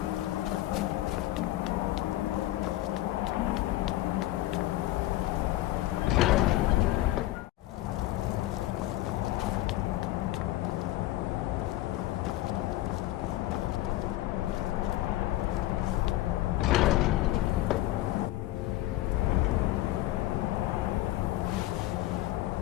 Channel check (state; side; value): quieter; right; 16.1 dB